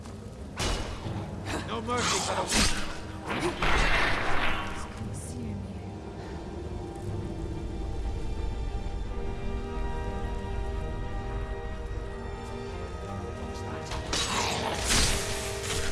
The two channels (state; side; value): identical; both; correlation 1.00